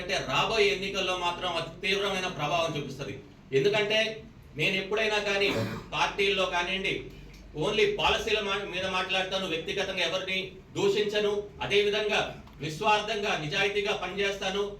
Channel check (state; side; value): identical; both; correlation 1.00